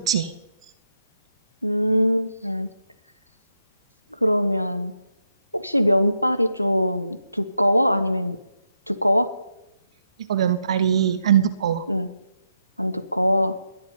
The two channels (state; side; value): inverted; both; correlation -0.82